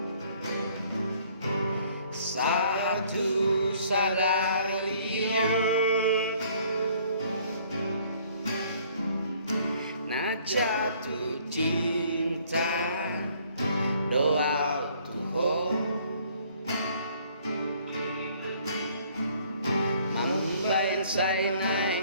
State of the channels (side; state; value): both; inverted; correlation -0.60